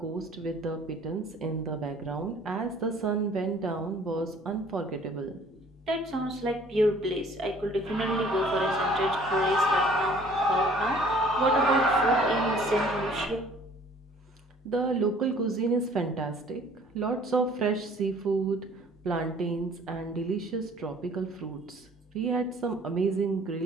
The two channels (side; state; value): both; normal; correlation 0.54